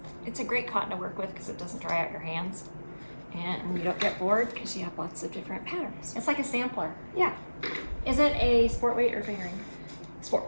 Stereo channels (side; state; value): both; inverted; correlation -1.00